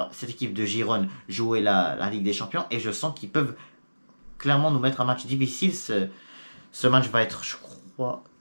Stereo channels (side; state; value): both; inverted; correlation -1.00